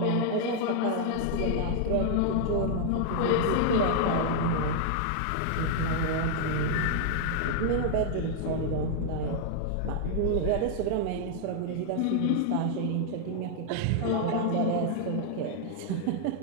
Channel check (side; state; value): both; different; correlation 0.00